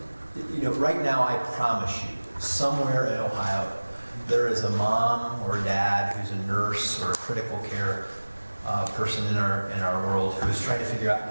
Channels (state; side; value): inverted; both; correlation -1.00